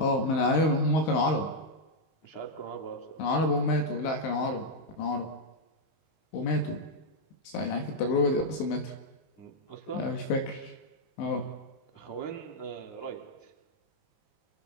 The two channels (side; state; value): right; late; 19 ms